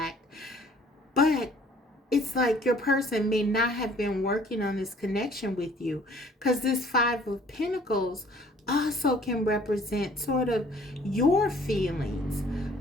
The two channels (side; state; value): both; normal; correlation 0.56